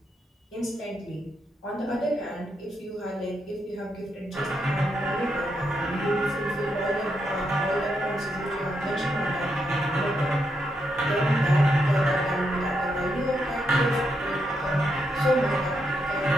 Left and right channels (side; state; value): both; normal; correlation 0.81